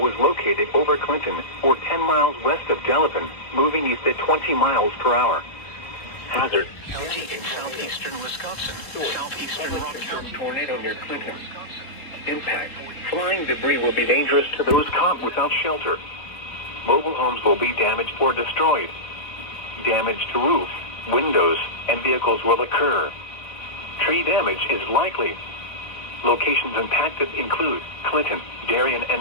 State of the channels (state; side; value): late; right; 4.1 ms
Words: located over Clinton, or 10 miles west of Delavan, moving east at 20 miles per hour. Hazard: County in southeastern Wisconsin, southeastern Rock County. Tornado near Clinton. Impact: flying debris will be dangerous to those caught without shelter. Mobile homes will be damaged or destroyed. Damage to roofs, windows, and vehicles will occur. Tree damage is likely. Locations impacted include Clinton, Darien,